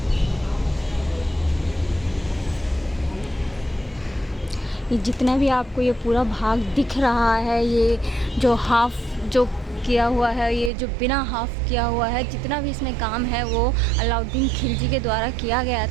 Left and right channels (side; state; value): left; drops out; at 10.7 s